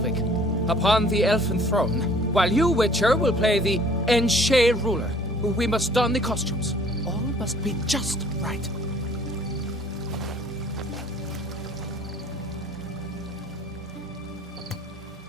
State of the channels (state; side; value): normal; both; correlation 0.54